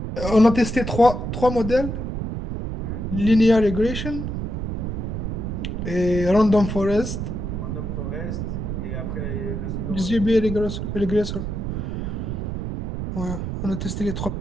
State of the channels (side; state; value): right; noise; rumble, 4 dB below the sound